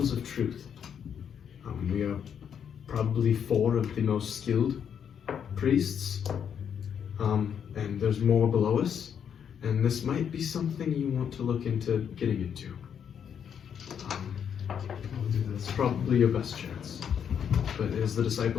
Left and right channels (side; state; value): right; quieter; 8.1 dB